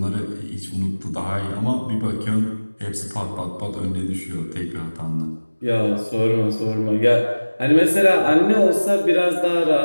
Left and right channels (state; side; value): inverted; both; correlation -1.00